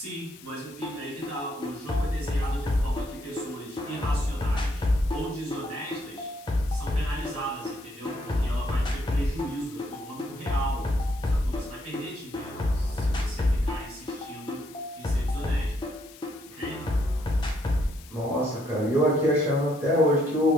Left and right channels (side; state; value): left; noise; hiss, 21 dB below the sound